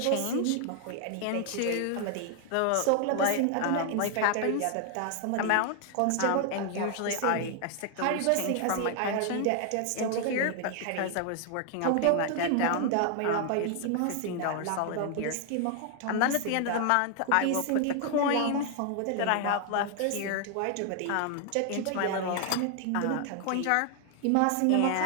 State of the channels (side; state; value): both; different; correlation 0.00